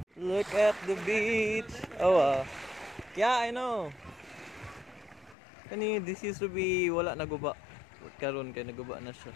Look at the beach. Oh yeah, I know. Kani this used to be wala na guba. Karon kay naguba na siya.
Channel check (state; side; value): drops out; right; at 5.4 s